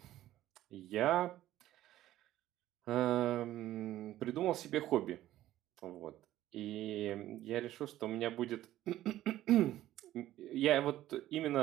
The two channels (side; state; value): left; quieter; 14.0 dB